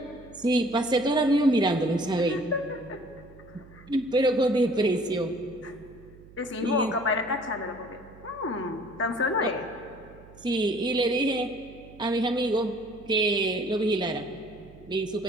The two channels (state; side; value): noise; right; hum, 22 dB below the sound